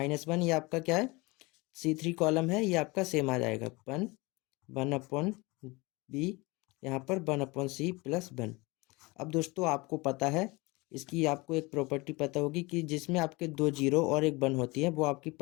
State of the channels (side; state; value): right; quieter; 24.5 dB